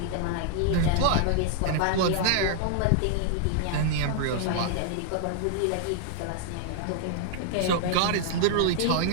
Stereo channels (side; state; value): both; different; correlation 0.00